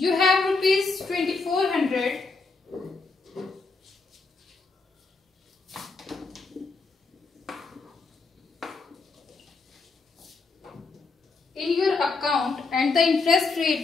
have rupees 2,400 in your account and the interest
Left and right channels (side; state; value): right; quieter; 4.1 dB